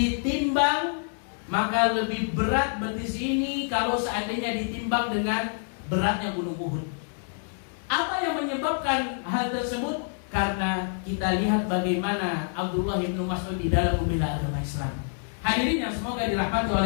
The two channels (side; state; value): right; silent; 60 dB below the other